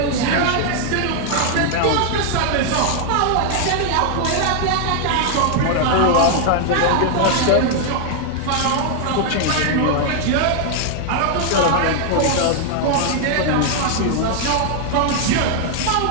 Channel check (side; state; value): both; different; correlation 0.00